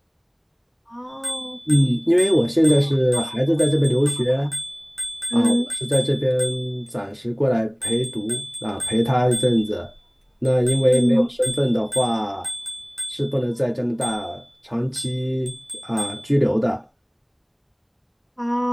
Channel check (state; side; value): identical; both; correlation 1.00